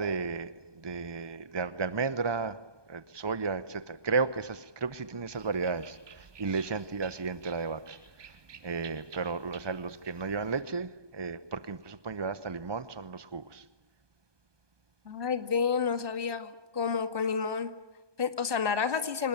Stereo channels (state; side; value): late; left; 1.2 ms